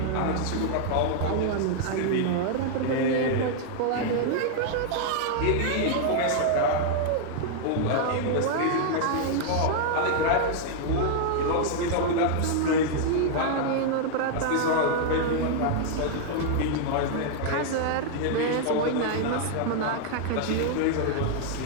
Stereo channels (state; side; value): different; both; correlation -0.01